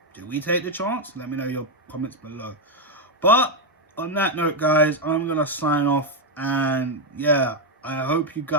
Do we take the chance? Let me know your comments below. But on that note, guys, I'm going to sign off. And yeah, I hope you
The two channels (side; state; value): both; normal; correlation 0.04